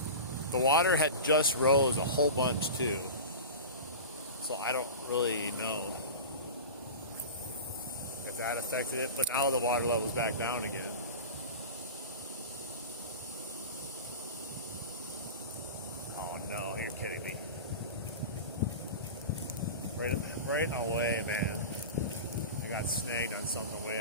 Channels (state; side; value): inverted; both; correlation -0.30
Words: The water had just rose a whole bunch too, so I don't really know if that affected it, but now the water level's back down again. Oh no, you're kidding me. Right away, man. I got snagged on something